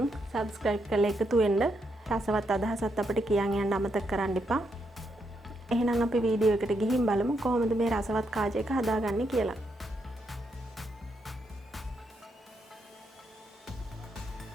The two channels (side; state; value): both; normal; correlation 0.79